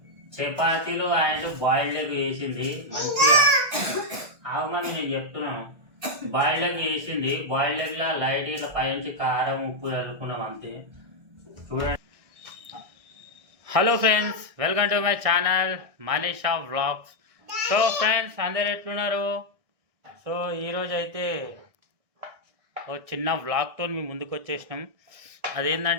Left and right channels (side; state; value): left; late; 1.6 ms